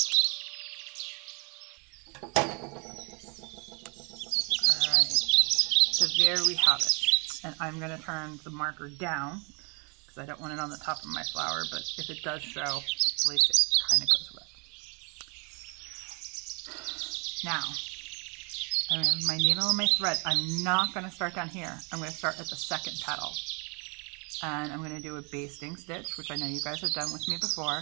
So there we have it. And I'm going to turn the marker down because I don't want it on the top of my flower, but if it does show, at least it kind of goes with. Now, I have my needle and my thread. I'm not going to start down here. I'm going to start at the second petal. And I'm going to do a basting stitch, which I know you guys have done with me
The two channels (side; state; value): left; quieter; 33.3 dB